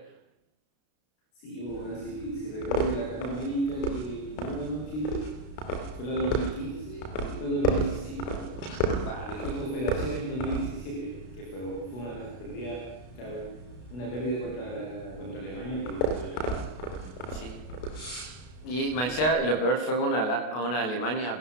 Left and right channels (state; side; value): late; right; 32 ms